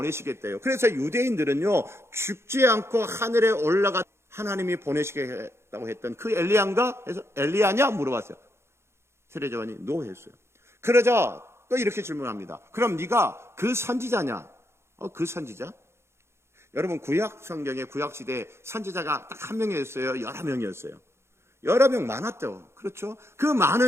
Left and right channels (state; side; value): late; left; 0.13 ms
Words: 그래서 유대인들은요 죽지 않고 하늘에 올라가 하나님이 보내시겠다고 했던 그 엘리야인가? 해서 엘리야냐 물어봤어요. 세례자 요한이 노 했어요. 그러자 또 이렇게 질문합니다. 그럼 네가 그 선지자냐? 그 선지자? 여러분 구약 성경의 구약 시대에 선지자가 딱 한 명이었어요? 여러 명이었어요? 여러 명 많았죠. 그렇죠? 그